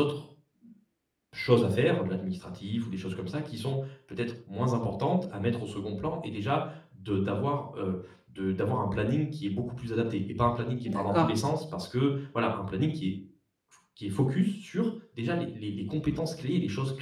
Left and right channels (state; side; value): identical; both; correlation 1.00